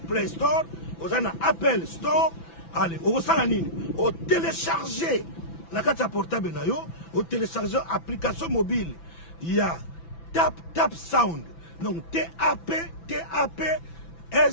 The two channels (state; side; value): late; right; 6.0 ms